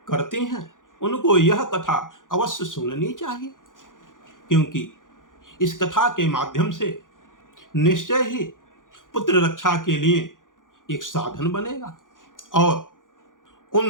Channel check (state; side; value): late; right; 0.88 ms